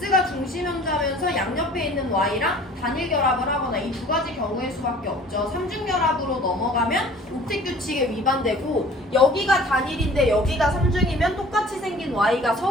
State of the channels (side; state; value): both; normal; correlation 0.49